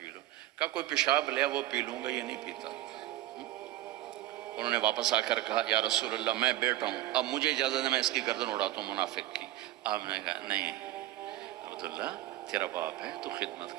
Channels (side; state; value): left; quieter; 15.0 dB